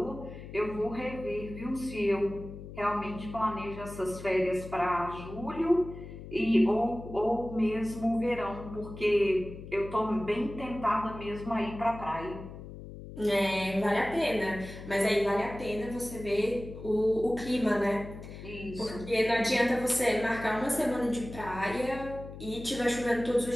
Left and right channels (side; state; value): left; noise; hum, 12 dB below the sound